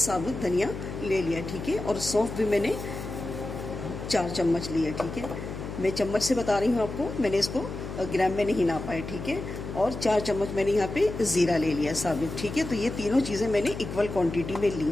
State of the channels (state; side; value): noise; left; hum, 8 dB below the sound